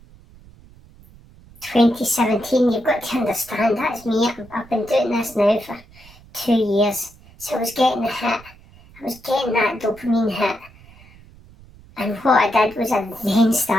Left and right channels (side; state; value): right; noise; rumble, 24 dB below the sound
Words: 2017, you've got to understand, that's me. I've been doing this now for 2 years. So I was getting a hit. I was getting that dopamine hit. And what I did was I then